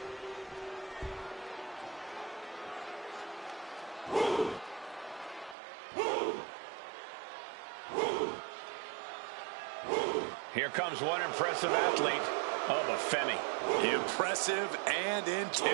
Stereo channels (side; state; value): left; drops out; at 5.6 s